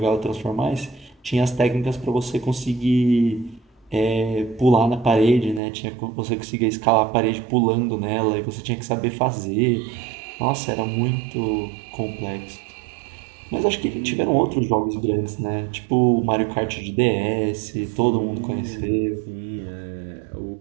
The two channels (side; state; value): left; drops out; at 5.6 s